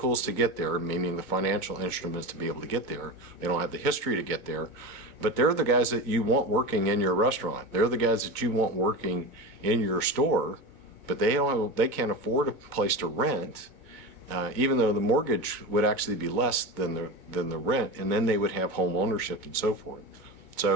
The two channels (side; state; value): left; late; 2.2 ms